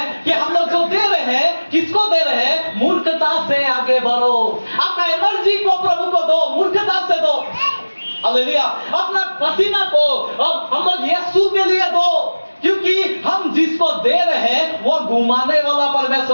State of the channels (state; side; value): inverted; both; correlation -1.00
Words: कि हम लोग जो दे रहे हैं किसको दे रहे हैं। मूर्खता से आगे बढ़ो। अपना एनर्जी को प्रभु को दो, मूर्खता से दो। हालेलुया। अपना पसीना को अब हम लोग यीशु के लिए दो, क्योंकि हम जिसको दे रहे हैं वो घुमाने वाला